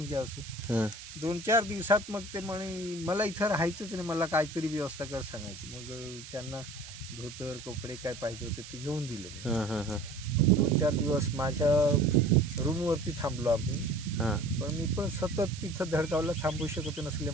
घ्या असं. हां 2-4 दिवसात मग ते म्हणे मला इथं राहायचंच नाही, मला काहीतरी व्यवस्था कर सांगायची. मग त्यांना धोतर कपडे काय पाहिजे होते ते घेऊन दिलं. हां हां हां 2-4 दिवस माझ्या रूमवरती थांबलो आम्ही. हां पण मी पण सतत तिथं धडगावला थांबू शकत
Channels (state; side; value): noise; right; hiss, 14 dB below the sound